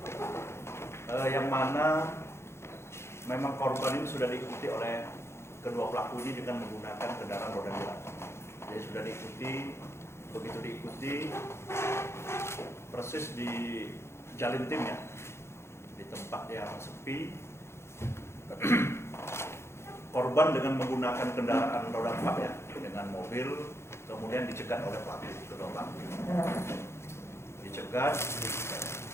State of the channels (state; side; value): late; right; 0.13 ms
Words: yang mana memang korban ini sudah diikuti oleh kedua pelaku ini dengan menggunakan kendaraan roda 2. Jadi sudah diikuti, begitu diikuti persis di Jalintim ya, di tempat yang sepi. Korban dengan menggunakan kendaraan roda 4 ya, dengan mobil, kemudian dicegat oleh pelaku, kedua pelaku. Dicegat,